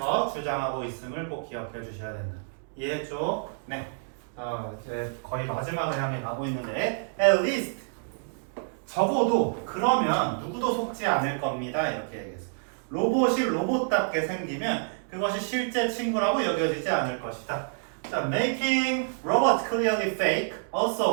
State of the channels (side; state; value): left; silent; digital silence